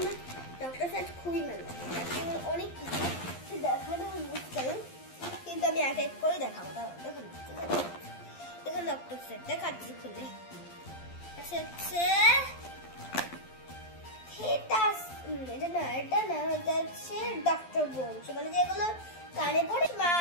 সেট খুবই ভালো, অনেক কিছু দেখানো মুশকিল, কিন্তু আমি এক এক করে দেখাবো। দেখুন দেখুন ডক্টর সেট দেখাচ্ছি খুলে। এটা না এটা হচ্ছে ডক্টর বোনস, মানে যেগুলো কানে পড়ে। মা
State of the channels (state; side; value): late; right; 12 ms